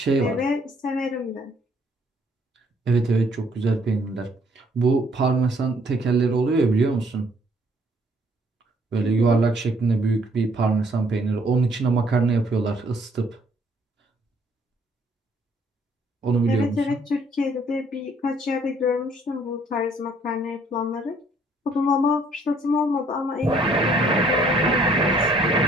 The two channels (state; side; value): normal; both; correlation 0.63